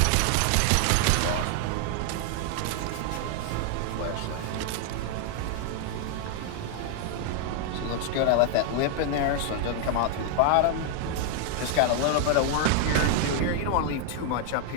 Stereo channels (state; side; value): different; both; correlation 0.00